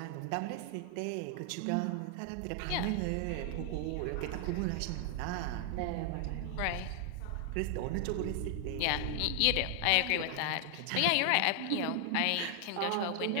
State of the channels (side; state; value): both; different; correlation 0.00